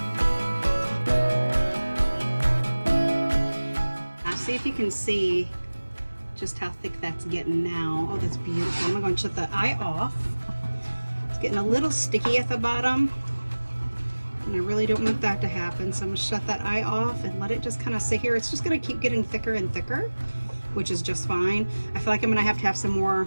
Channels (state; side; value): inverted; both; correlation -1.00